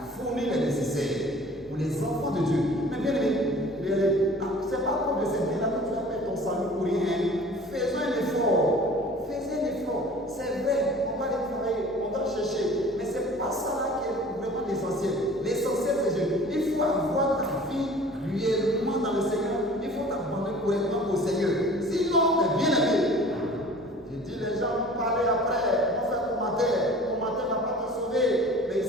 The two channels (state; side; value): normal; both; correlation 0.46